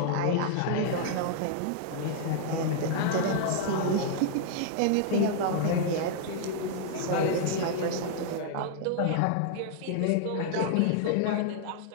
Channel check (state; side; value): different; both; correlation -0.01